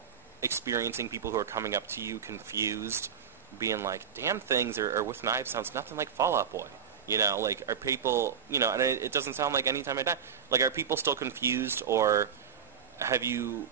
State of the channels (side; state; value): left; quieter; 7.5 dB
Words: experiencing people who are coming up to you confused, being like, Damn Things or With Knives sounds nothing like Fall Out Boy? Are people, and it doesn't sound like Any Time I Die. Like, are people still confused, or have you